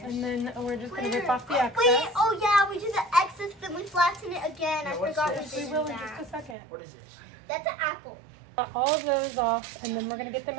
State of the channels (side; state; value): left; drops out; at 6.6 s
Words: And then we're just gonna Where? rip off the excess. Wait, oh yeah, we did the excess, then we flatten it again. Yeah, I what's forgot we this? We did will in just a that. second. What is this? That's an apple. Cut all of those off, and then we're gonna get them